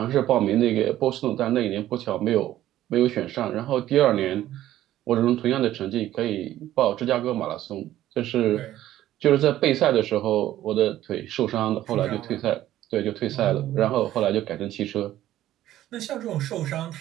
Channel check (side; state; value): left; quieter; 13.4 dB